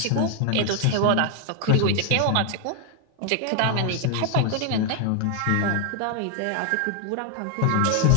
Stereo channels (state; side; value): different; both; correlation 0.00